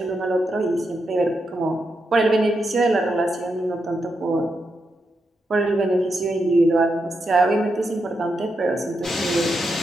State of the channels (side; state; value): both; normal; correlation 0.84